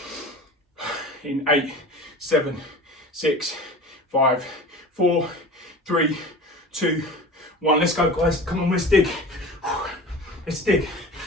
In 8, 7, 6, 5, 4, 3, 2, 1. Let's go, guys. Come on, let's dig. Let's dig.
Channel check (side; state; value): both; normal; correlation 0.36